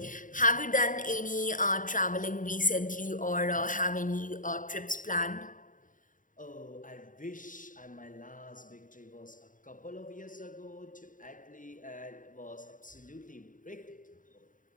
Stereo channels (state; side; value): late; right; 0.38 ms